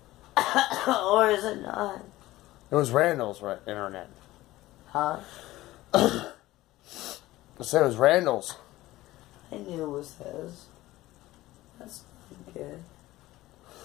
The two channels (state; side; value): quieter; right; 17.1 dB